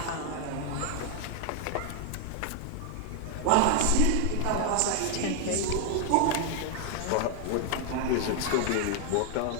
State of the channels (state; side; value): different; both; correlation 0.00